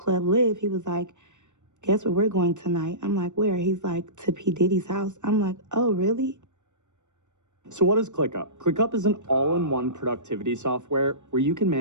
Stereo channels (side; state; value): left; late; 0.84 ms